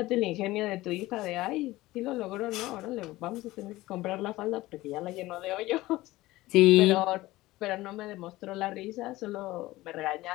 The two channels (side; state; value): right; quieter; 18.1 dB